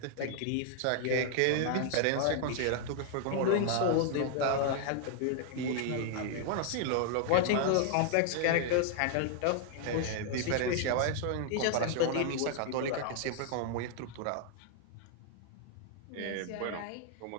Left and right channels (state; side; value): different; both; correlation 0.00